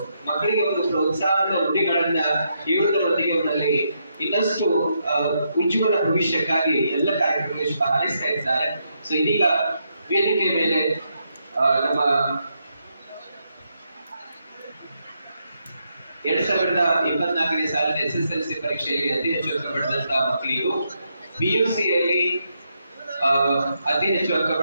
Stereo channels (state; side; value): inverted; both; correlation -0.79